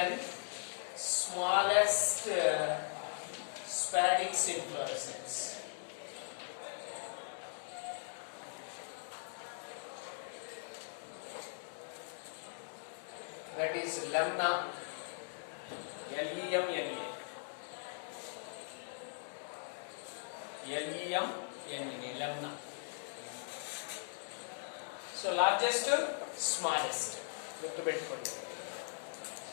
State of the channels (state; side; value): silent; right; digital silence